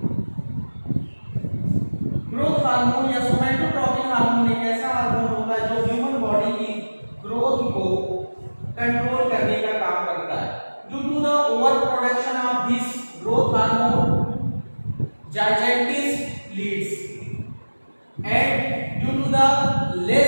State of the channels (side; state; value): both; inverted; correlation -1.00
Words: Growth hormone या somatotropic hormone एक ऐसा hormone होता है जो human body की growth को control करने का काम करता है. Due to the over production of this growth hormone, gigantism leads, and due to the